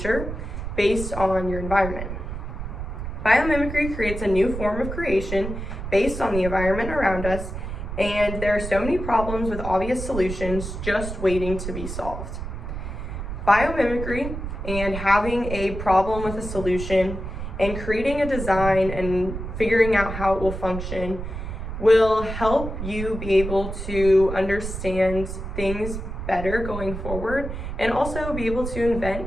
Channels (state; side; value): noise; right; rumble, 7 dB below the sound